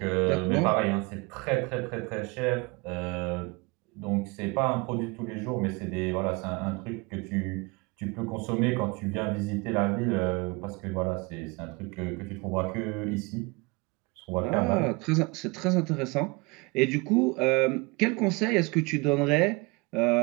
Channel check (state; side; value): quieter; left; 26.6 dB